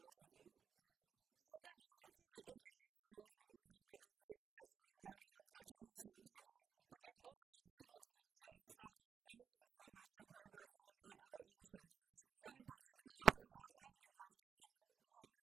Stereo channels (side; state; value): left; quieter; 7.0 dB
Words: So not only did the internship experience ignite my enthusiasm in learning objectivist philosophy, but it also enables me to establish friendships with my supervisors and other interns. So in particular, I was fortunate enough to have